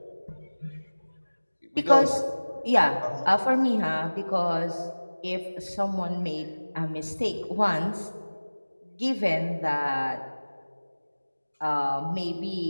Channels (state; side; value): inverted; both; correlation -1.00